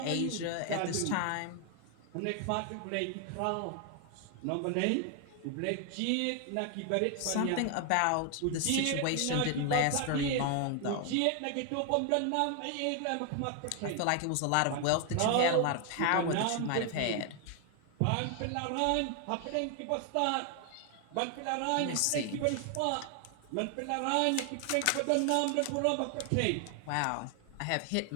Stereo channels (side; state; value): both; different; correlation 0.00